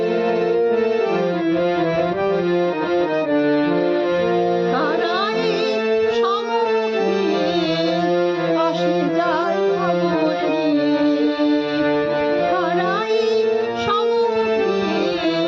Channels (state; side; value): identical; both; correlation 1.00